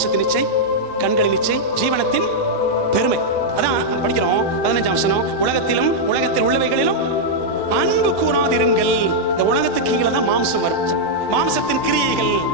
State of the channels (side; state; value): right; late; 1.1 ms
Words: இச்சை, கண்களின் இச்சை, ஜீவனத்தின் பெருமை. அதான் படிக்கிறோம் 15ஆம் வசனம், உலகத்திலும் உலகத்தில் உள்ளவைகளிலும் அன்பு கூறாதிருங்கள். இந்த உலகத்துக்கு கீழே தான் மாம்சம் வரும். மாம்சத்தின் கிரியைகள்